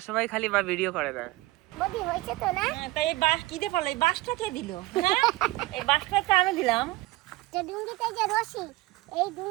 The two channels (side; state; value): left; quieter; 19.6 dB